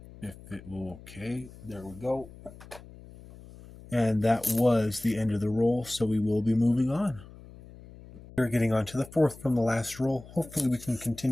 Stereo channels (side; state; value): left; noise; hum, 19 dB below the sound